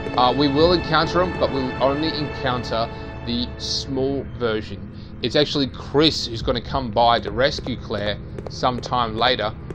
we will encounter them, but we'll only encounter the small version. It's actually Chris who's going to come by to rescue Claire sometime later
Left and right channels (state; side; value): identical; both; correlation 1.00